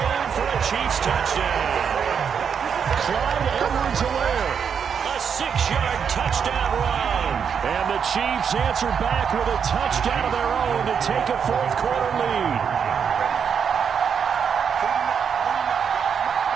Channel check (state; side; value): quieter; left; 7.1 dB